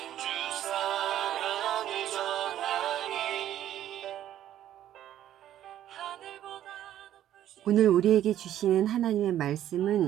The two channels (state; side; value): quieter; left; 11.8 dB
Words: 주 사랑을 전하니. 오늘 우리에게 주시는 하나님의